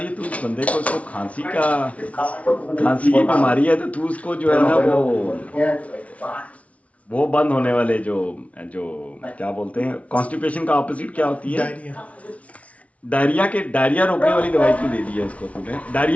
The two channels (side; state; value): right; late; 0.065 ms